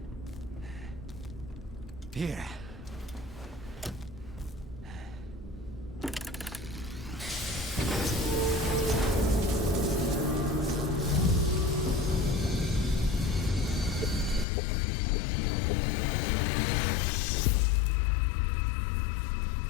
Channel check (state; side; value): drops out; right; at 14.5 s